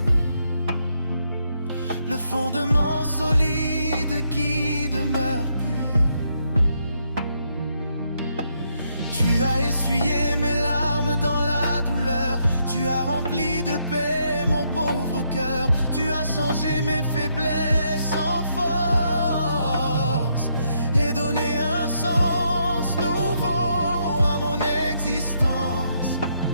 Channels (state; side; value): inverted; both; correlation -0.76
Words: le fondement solide qui demeure pur. Tu as essuyé mes larmes dans la douleur. Tu as rempli de paix mon pauvre cœur. Tu as changé mes faiblesses en force et donné un sens nouveau à mon existence.